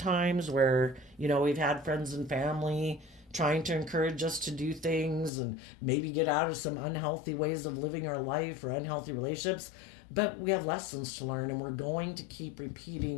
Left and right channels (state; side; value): drops out; right; at 5.3 s